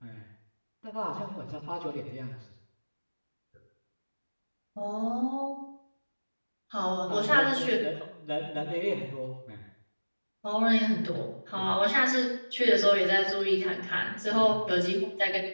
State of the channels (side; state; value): both; inverted; correlation -1.00